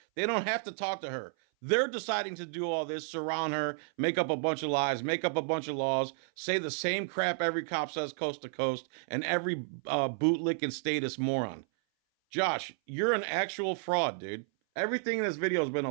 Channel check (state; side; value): silent; left; 57 dB below the other